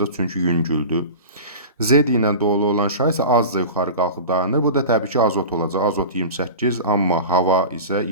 çünki yüngüldür. Z ilə dolu olan şar isə azca yuxarı qalxıb dayanır. Bu da təbii ki, azot olacaq. Azot 28, amma hava isə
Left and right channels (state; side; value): inverted; both; correlation -0.33